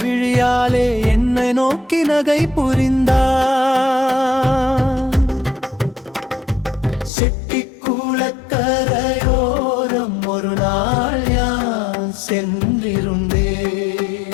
என்னை நோக்கி நகை புரிந்தார். செட்டிக்குளக்கரையோரம் ஒரு நாள் யான்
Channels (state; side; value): drops out; right; at 7.1 s